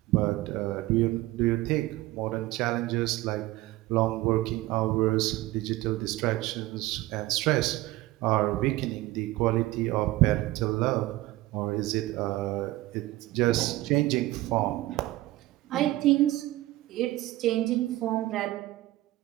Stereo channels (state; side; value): quieter; left; 17.9 dB